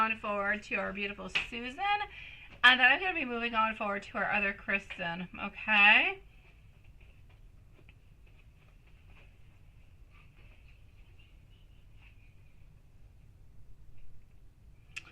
forward to our beautiful Susan, and then I'm going to be moving on forward to our other Kristen, okay?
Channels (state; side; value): identical; both; correlation 1.00